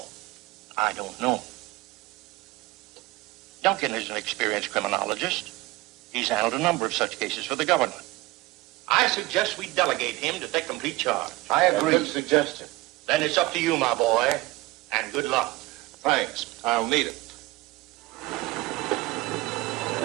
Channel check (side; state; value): left; quieter; 19.8 dB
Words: I don't know. Duncan is an experienced criminologist. He's handled a number of such cases for the government. I suggest we delegate him to take complete charge. I agree. Good suggestion. Then it's up to you, my boy, and good luck. Thanks. I'll need it.